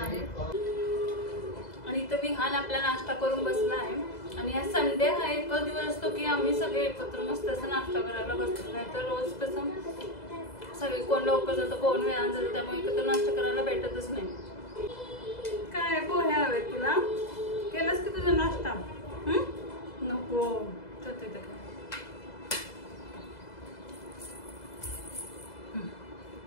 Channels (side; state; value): right; late; 2.0 ms